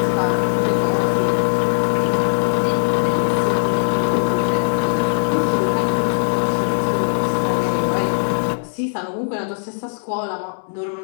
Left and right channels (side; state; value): right; silent; 66 dB below the other